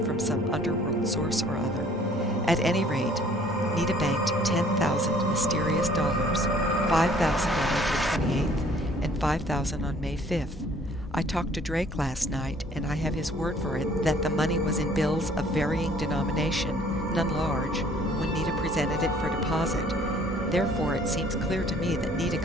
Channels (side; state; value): both; normal; correlation 0.57